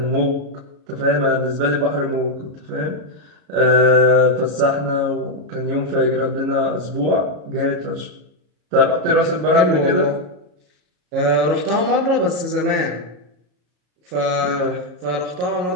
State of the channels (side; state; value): left; late; 33 ms